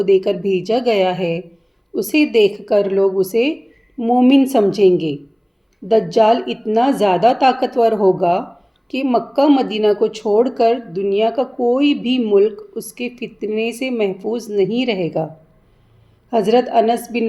دے کر بھیجا گیا ہے اسے دیکھ کر لوگ اسے مومن سمجھیں گے۔ دجال اتنا زیادہ طاقتور ہوگا کہ مکہ مدینہ کو چھوڑ کر دنیا کا کوئی بھی ملک اس کے فتنے سے محفوظ نہیں رہے گا۔ حضرت انس بن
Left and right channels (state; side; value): identical; both; correlation 1.00